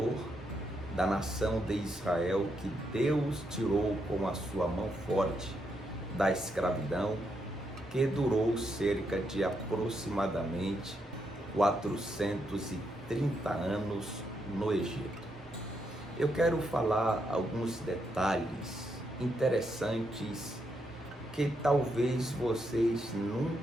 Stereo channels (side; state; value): both; normal; correlation 0.80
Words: da nação de Israel, que Deus tirou com a sua mão forte da escravidão, que durou cerca de aproximadamente 430 anos no Egito. Eu quero falar alguns detalhes interessantes que talvez vocês